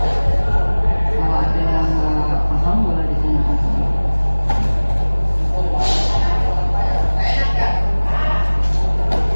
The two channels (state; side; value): inverted; both; correlation -1.00